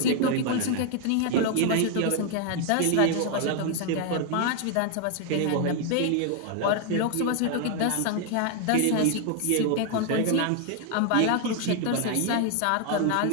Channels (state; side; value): different; both; correlation 0.00